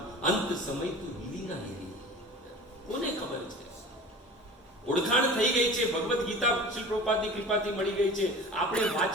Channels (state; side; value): normal; both; correlation 0.38